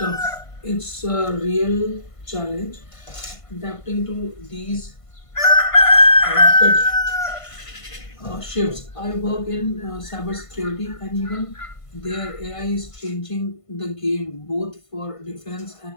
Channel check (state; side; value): late; right; 1.5 ms